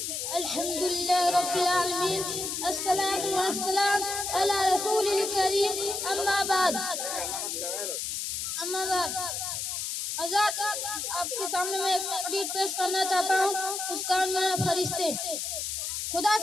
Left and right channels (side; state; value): left; noise; hiss, 3 dB below the sound